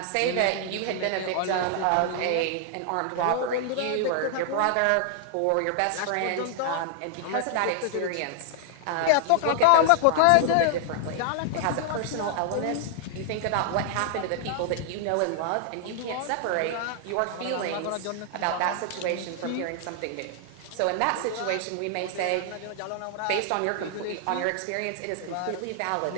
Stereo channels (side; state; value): both; different; correlation 0.00